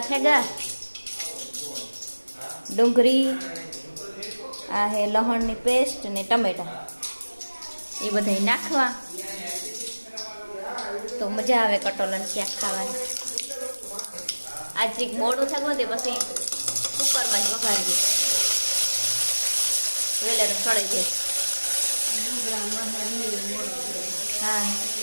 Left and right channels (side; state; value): both; inverted; correlation -1.00